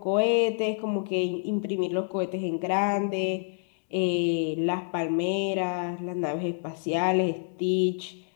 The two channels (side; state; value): right; silent; digital silence